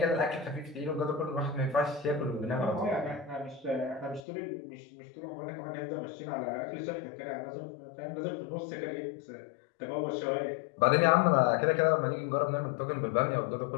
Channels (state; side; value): drops out; right; at 4.2 s